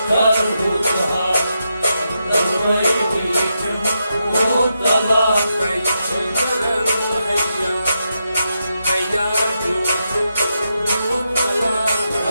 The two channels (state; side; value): inverted; both; correlation -0.85